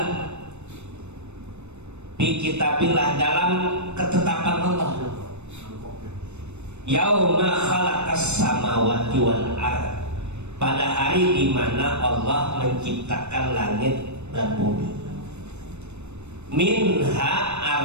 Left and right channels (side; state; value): left; late; 0.82 ms